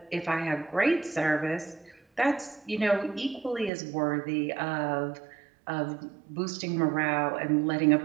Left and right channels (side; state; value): left; drops out; at 3.7 s